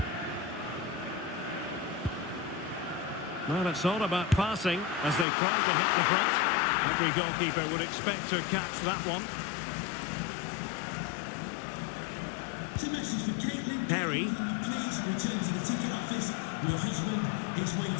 Well, it's all about passing as they try to hit the front. Every goalkeeper would expect to catch that one. It's a message for Caitlin. Perry. Please return to the ticket office. Your husband is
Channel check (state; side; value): drops out; right; at 5.2 s